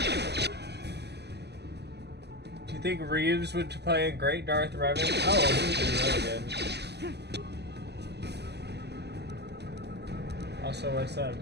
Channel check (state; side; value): late; left; 0.49 ms